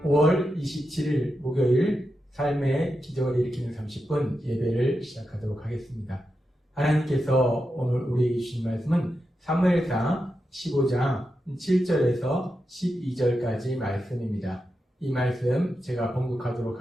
5월 27일 목요일 삶의 기적을 일으키는 30분 예배를 시작하도록 하겠습니다. 하나님께서 오늘 우리에게 주신 말씀은 사무엘상 15장 7절에서 12절까지 말씀입니다. 이 말씀 제가 봉독하도록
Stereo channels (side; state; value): both; normal; correlation 0.88